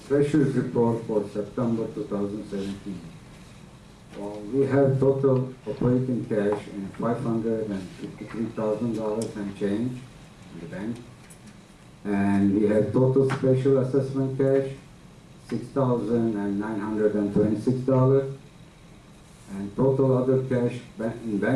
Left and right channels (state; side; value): identical; both; correlation 1.00